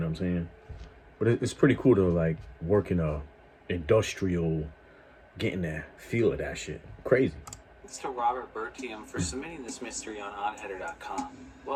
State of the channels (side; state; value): both; identical; correlation 1.00